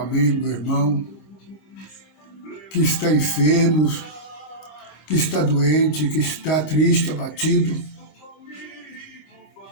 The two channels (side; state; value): right; late; 25 ms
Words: meu irmão, que está enfermo, que está doente, que está triste, abatido,